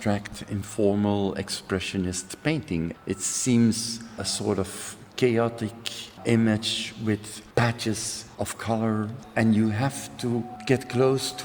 informal, expressionist painting. It seems a sort of chaotic image with patches of color, and you have to get close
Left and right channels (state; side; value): identical; both; correlation 1.00